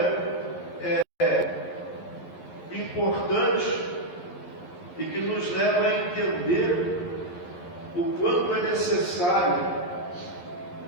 importante e que nos leva a entender o quanto é necessário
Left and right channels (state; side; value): late; right; 11 ms